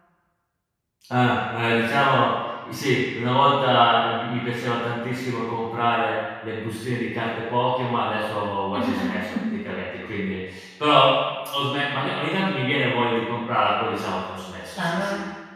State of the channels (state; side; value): identical; both; correlation 1.00